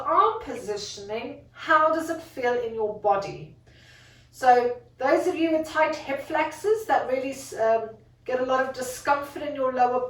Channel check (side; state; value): both; identical; correlation 1.00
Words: positioning, how does it feel in your body? So those of you with tight hip flexors that really get a lot of discomfort in your lower